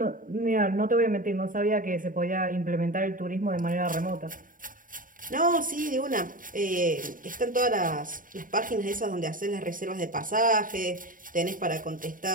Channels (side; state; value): left; late; 0.39 ms